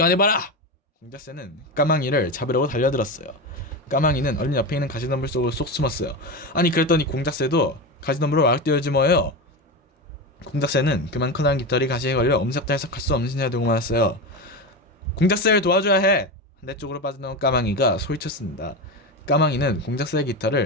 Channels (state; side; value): normal; both; correlation 0.19